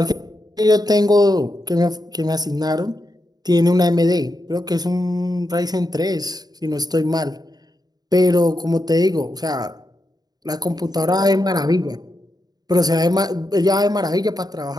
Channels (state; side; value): late; left; 0.19 ms